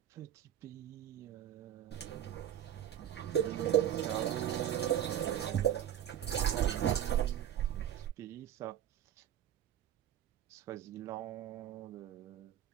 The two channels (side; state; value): left; quieter; 10.7 dB